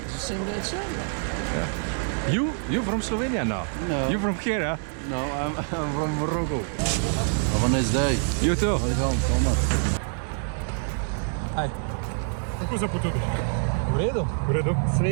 It's the same day as Yeah. You from Slovenia now? No. You from here, huh? No, I'm from Morocco. Have a nice day. You too. Welcome, Thomas. Hi. Kako se počutiš? V redu? V redu.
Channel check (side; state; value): left; silent; 61 dB below the other